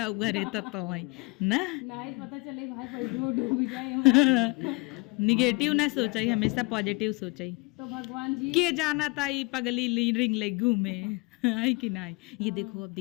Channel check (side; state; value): right; quieter; 28.1 dB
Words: घरे तब तो आई ना नहीं पता चले भाई डूब जाए। निगेटिव ना सोचा, हमेशा पॉजिटिव सोचा। तो भगवान जी के जाना ताई पगली रिंग ले घूमे आई कि नहीं। ये देखो, अब